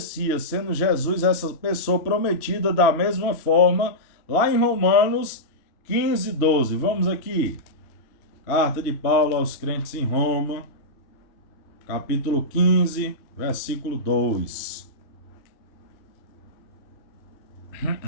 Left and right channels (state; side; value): late; right; 3.1 ms